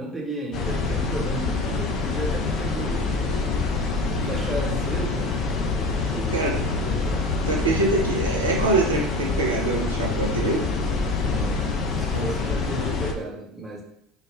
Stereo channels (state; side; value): normal; both; correlation 0.30